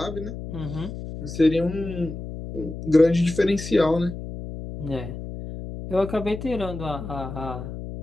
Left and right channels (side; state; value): left; noise; hum, 9 dB below the sound